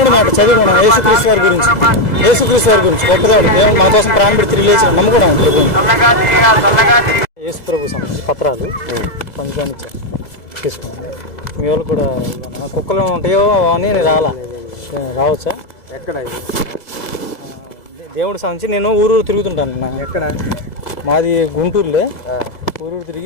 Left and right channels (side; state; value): right; late; 2.0 ms